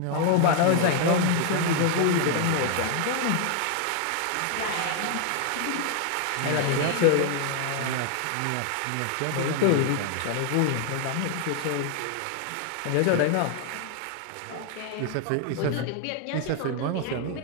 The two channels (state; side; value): different; both; correlation 0.00